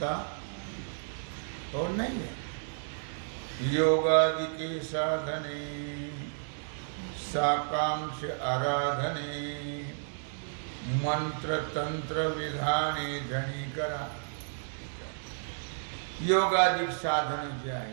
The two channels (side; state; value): left; silent; digital silence